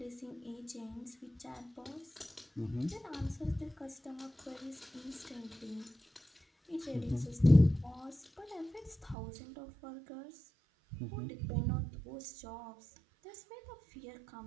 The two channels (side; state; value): left; drops out; at 9.2 s